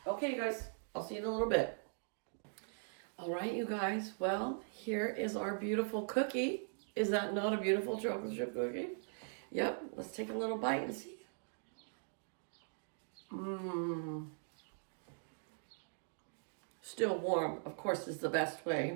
Okay, you guys, I'll see you in a little bit. All right, you guys, well, here is our beautiful cookie. Is that not a beautiful chocolate chip cookie? Yep, let's take a little bite and see. Mmm. Still warm, of course, is the best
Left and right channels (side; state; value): left; silent; digital silence